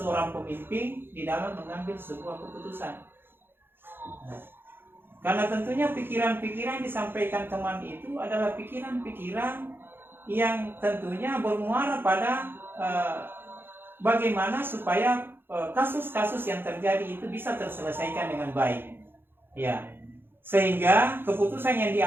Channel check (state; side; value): late; left; 0.10 ms